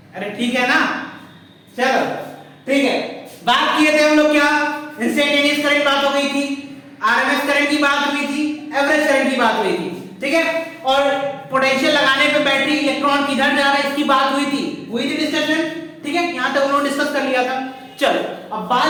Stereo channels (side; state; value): both; identical; correlation 1.00